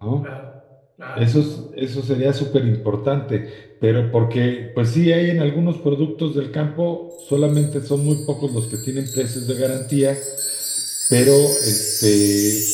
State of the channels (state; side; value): identical; both; correlation 1.00